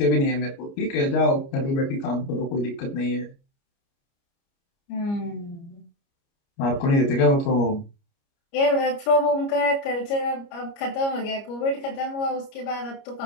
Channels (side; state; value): right; late; 29 ms